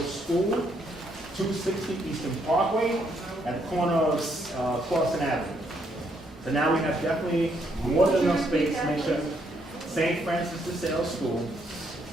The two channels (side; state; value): both; normal; correlation 0.73